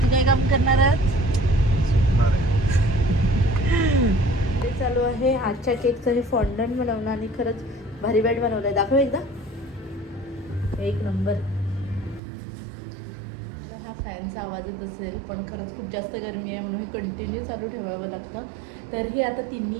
काय काम करणार आहात? ते चालू आहे आजच्या केकचं हे फॉन्डंट बनवणं. आणि खरंच भारी बॅट बनवलं आहे. दाखव एकदा, एक नंबर. हा फॅनचा आवाज येत असेल, पण खरंच खूप जास्त गरमी आहे म्हणून हे कंटिन्यू चालू ठेवावं लागतं. तर ही आता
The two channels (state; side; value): drops out; left; at 12.2 s